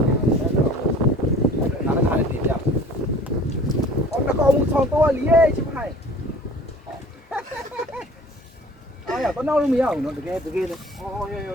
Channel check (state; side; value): normal; both; correlation 0.47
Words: နောက်လို့မရဘူးနော်တကယ်လေအော်ရေ